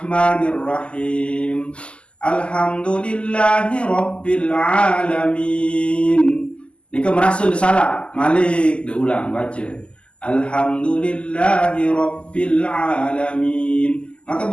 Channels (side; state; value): right; late; 0.053 ms